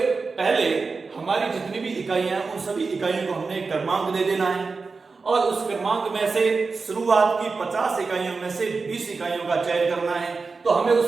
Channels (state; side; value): quieter; left; 4.4 dB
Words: पहले हमारी जितनी भी इकाइयां हैं, उन सभी इकाइयों को हमने एक क्रमांक दे देना है, और उस क्रमांक में से शुरुआत की 50 इकाइयों में से 20 इकाइयों का चयन करना है। तो हमें